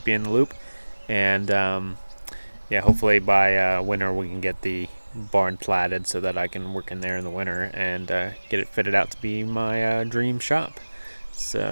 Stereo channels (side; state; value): both; inverted; correlation -1.00